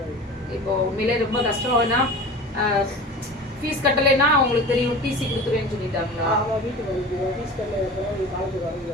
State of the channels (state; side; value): normal; both; correlation 0.35